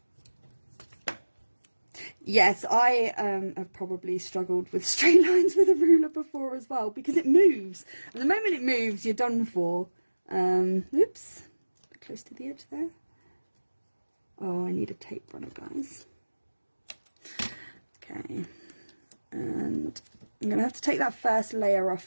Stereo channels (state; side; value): inverted; both; correlation -1.00